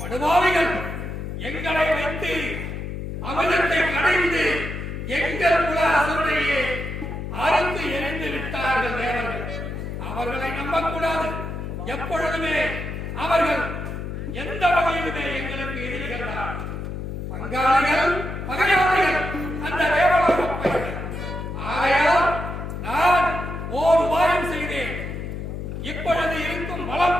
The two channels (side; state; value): left; noise; hum, 6 dB below the sound